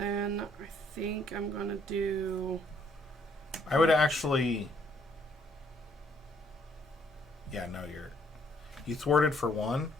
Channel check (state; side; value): normal; both; correlation 0.67